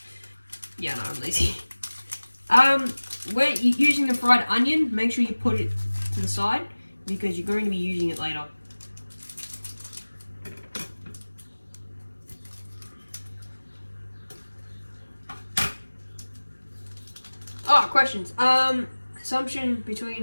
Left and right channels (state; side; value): inverted; both; correlation -1.00